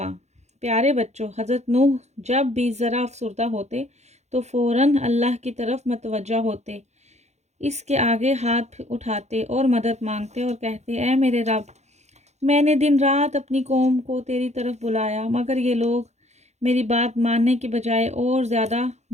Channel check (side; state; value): left; late; 0.33 ms